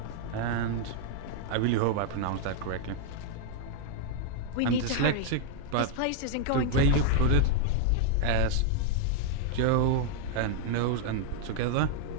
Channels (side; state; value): both; different; correlation 0.00